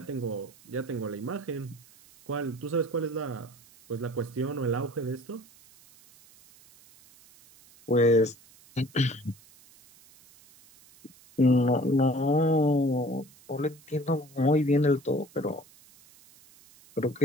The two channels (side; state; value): right; noise; hiss, 26 dB below the sound